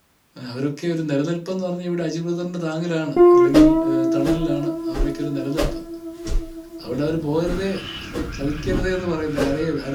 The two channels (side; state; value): both; identical; correlation 1.00